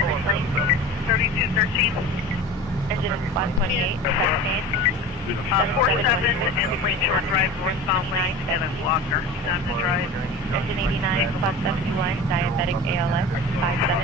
of 3213. engine 128, 47 and Lakeshore Drive, northbound lane, and a blocker. He's on the drive. engine 89, plus 71, diabetic ALS,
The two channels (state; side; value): normal; both; correlation 0.35